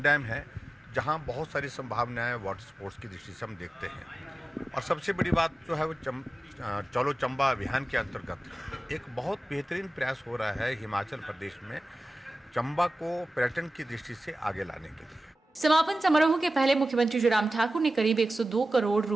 डैम है जहाँ बहुत सारी संभावनाएं वाटर स्पोर्ट्स की दृष्टि से हम देखते हैं। और सबसे बड़ी बात जो है वो चलो चंबा अभियान के अंतर्गत एक बहुत बेहतरीन प्रयास हो रहा है हिमाचल प्रदेश में चंबा को पर्यटन की दृष्टि से आगे लाने के लिए। समापन समारोह के पहले मुख्यमंत्री जयराम ठाकुर ने करीब 102 करोड़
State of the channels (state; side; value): normal; both; correlation 0.96